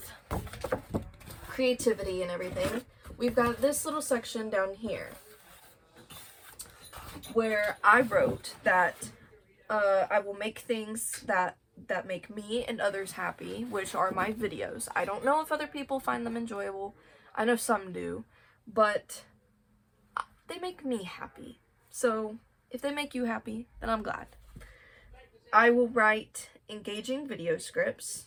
creativity and everything, we've got this little section down here where I wrote that I will make things that make me and others happy, which are my videos. I don't know if other people find them enjoyable. I know some do, but they make me happy. So if they make you happy, then I'm glad. I will write engaging video scripts.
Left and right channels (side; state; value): both; identical; correlation 1.00